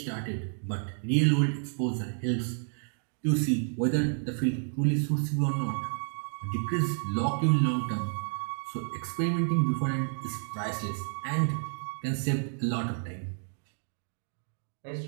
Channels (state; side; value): silent; left; 57 dB below the other